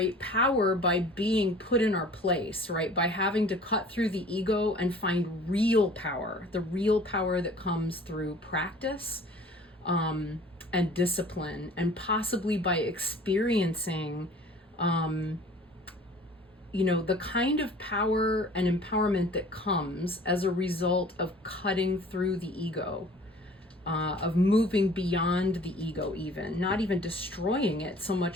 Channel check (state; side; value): normal; both; correlation 0.48